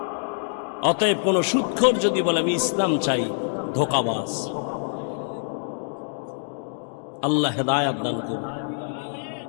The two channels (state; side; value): silent; right; digital silence